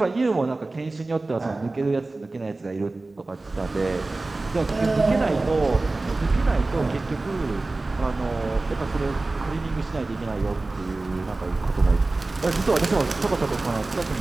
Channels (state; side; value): quieter; left; 3.2 dB